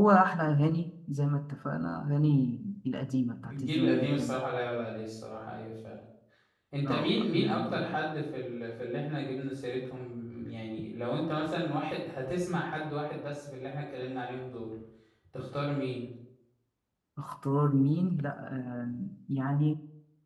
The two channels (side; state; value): both; identical; correlation 1.00